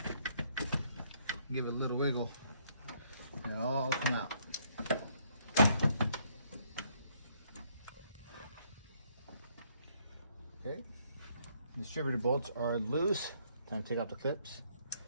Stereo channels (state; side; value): inverted; both; correlation -0.69